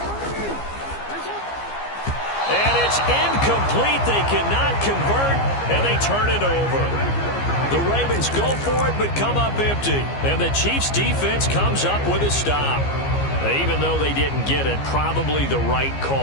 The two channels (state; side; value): late; right; 15 ms